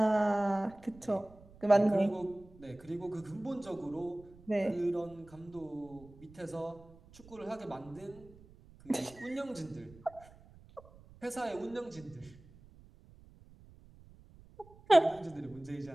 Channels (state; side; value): noise; right; rumble, 23 dB below the sound